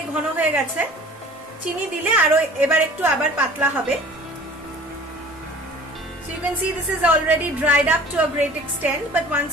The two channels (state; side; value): normal; both; correlation 0.46